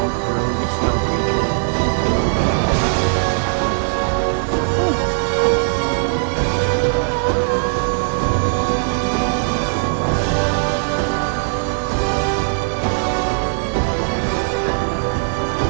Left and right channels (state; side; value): silent; left; 67 dB below the other